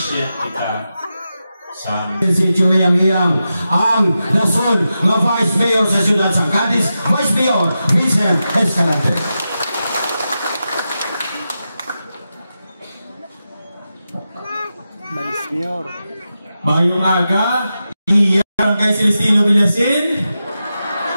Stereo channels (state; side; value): inverted; both; correlation -0.90